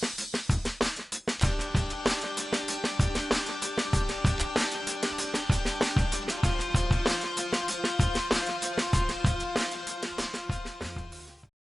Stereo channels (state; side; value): normal; both; correlation 0.96